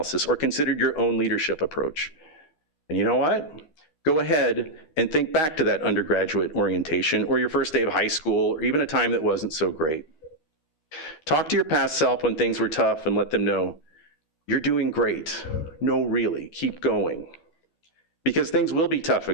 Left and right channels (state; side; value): late; right; 13 ms